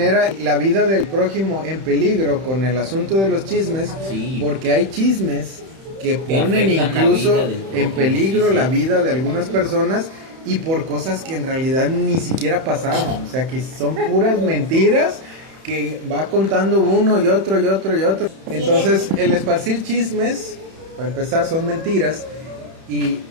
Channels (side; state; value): left; late; 31 ms